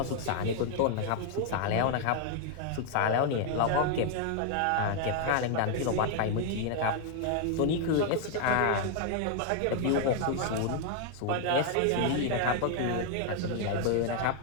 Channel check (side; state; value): both; different; correlation 0.00